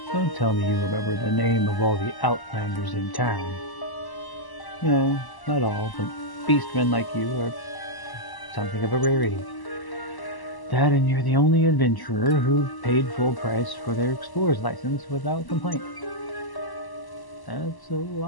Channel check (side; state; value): right; late; 1.0 ms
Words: Don't tell me you remember the name of all the outlanders in town. No, not all, but beastmen like you are something of a rarity. That and you're the only adventurer who paid full price for their explorer's license without complaint. That's a